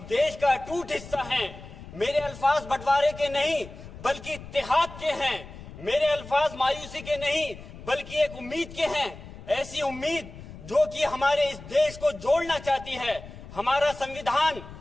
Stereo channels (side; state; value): left; noise; rumble, 15 dB below the sound